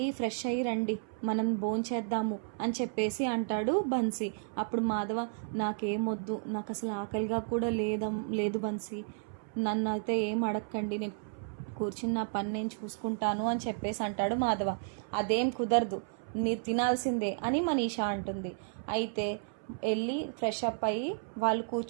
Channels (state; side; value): silent; left; 56 dB below the other